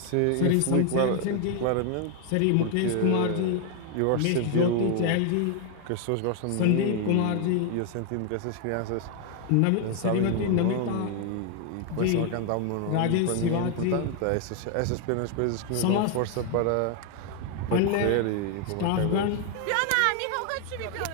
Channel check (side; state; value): both; different; correlation 0.00